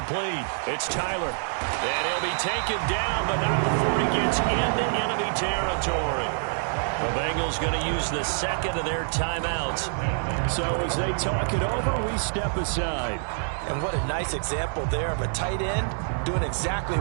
It's Tyler. And he'll be taken down, but not before he gets into enemy territory. The Bengals going to use the second of their timeouts. So as they talk it over, we step aside. And what a nice example there of a tight end doing exactly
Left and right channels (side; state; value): left; silent; 61 dB below the other